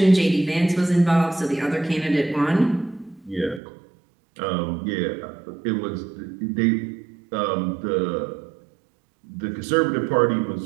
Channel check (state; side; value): drops out; left; at 3.6 s